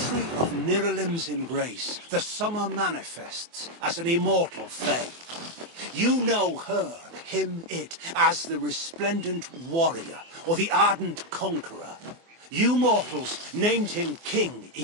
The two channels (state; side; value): late; left; 24 ms